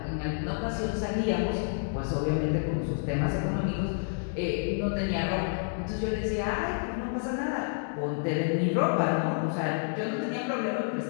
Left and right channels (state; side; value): silent; right; 58 dB below the other